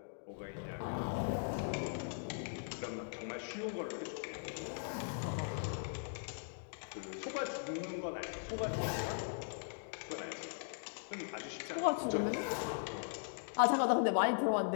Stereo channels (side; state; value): right; silent; digital silence